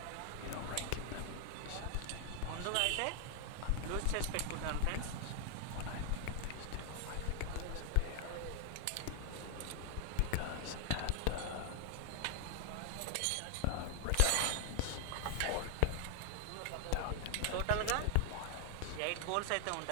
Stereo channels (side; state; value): both; different; correlation 0.00